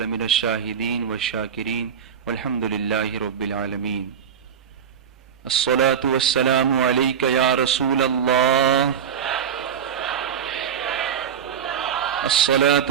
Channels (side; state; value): left; quieter; 7.8 dB